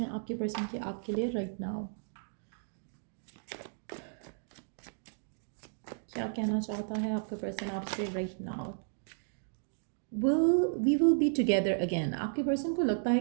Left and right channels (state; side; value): silent; left; digital silence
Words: आपके पर्सन के आपके लिए राइट नाउ. क्या कहना चाहता है आपका पर्सन आपसे right now. We will be together again. आपके पर्सन को लगता है